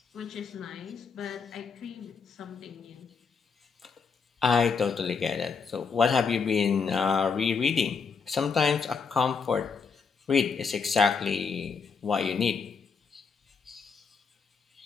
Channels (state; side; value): quieter; right; 5.5 dB